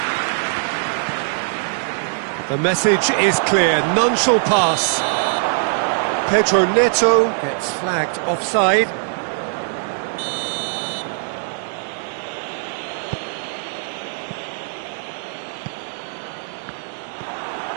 The message is clear, none shall pass. Pedro Neto gets flagged offside.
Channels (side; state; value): left; silent; digital silence